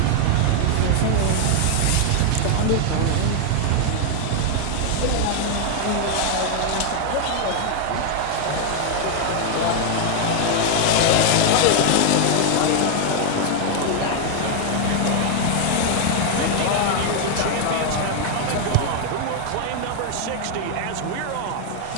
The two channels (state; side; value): different; both; correlation 0.00